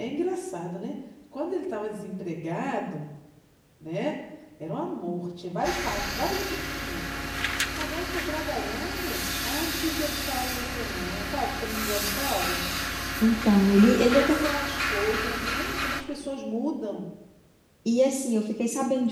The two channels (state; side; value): identical; both; correlation 1.00